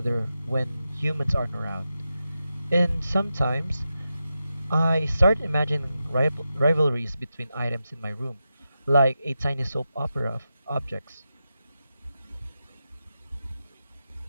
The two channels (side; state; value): both; inverted; correlation -0.89